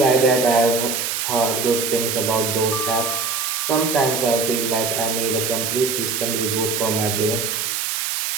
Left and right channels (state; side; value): noise; right; hiss, 1 dB below the sound